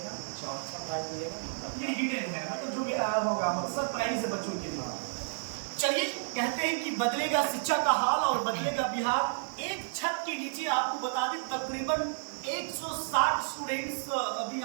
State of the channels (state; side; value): silent; left; 57 dB below the other